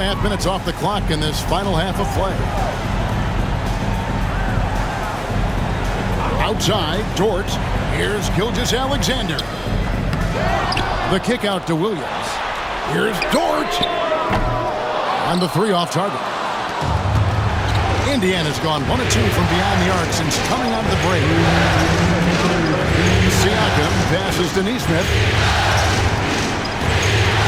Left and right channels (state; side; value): identical; both; correlation 1.00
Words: minutes off the clock in this final half of play. Outside, Dort. Here's Gilgeous-Alexander. The kick out to Williams. Here's Dort. And the three off target. Indiana's gone 1 of 2 from beyond the arc since coming out of the break. Siakam passes to Neesmith.